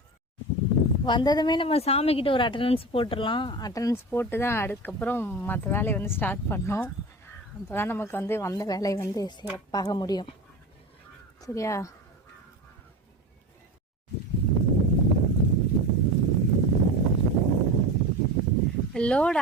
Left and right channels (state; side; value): normal; both; correlation 0.29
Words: வந்ததுமே நம்ம சாமிக்கிட்ட ஒரு அட்டண்டன்ஸ் போட்டுடலாம். அட்டண்டன்ஸ் போட்டு தான் அதுக்கப்புறம் மற்ற வேலையை ஸ்டார்ட் பண்ணோம். அப்போ தான் நமக்கு வந்த வேலையை சிறப்பாக முடியும். சரியா? லோடு